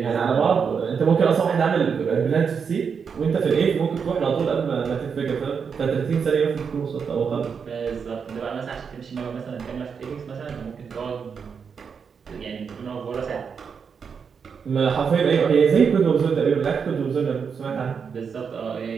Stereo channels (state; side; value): quieter; left; 6.3 dB